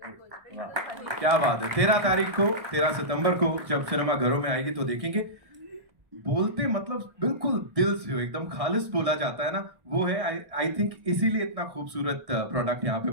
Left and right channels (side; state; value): left; late; 1.6 ms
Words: क्या बात है। 13 सितंबर को जब सिनेमा घरों में आएगी तो देखेंगे। बोलते मतलब बिल्कुल दिल से हो, एकदम खालिस बोला जाता है ना, वो है। आई थिंक इसीलिए इतना खूबसूरत प्रोडक्ट यहाँ पे